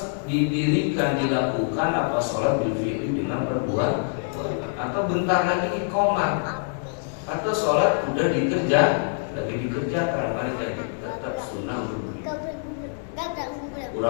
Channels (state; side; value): silent; right; digital silence